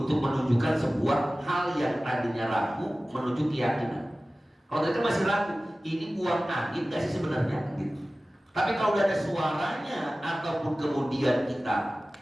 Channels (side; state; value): both; normal; correlation 0.96